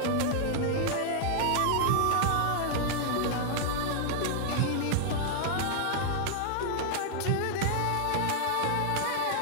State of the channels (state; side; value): different; both; correlation 0.00